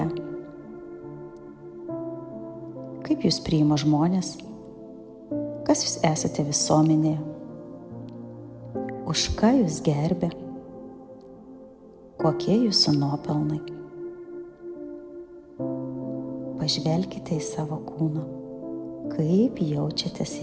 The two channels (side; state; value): both; identical; correlation 1.00